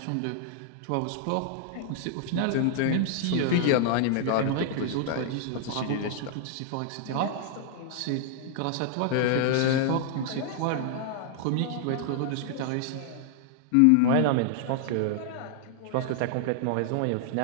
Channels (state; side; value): different; both; correlation -0.01